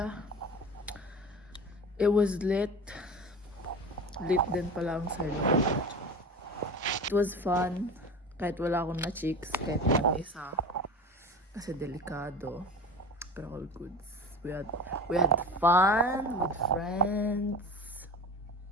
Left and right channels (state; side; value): normal; both; correlation 0.31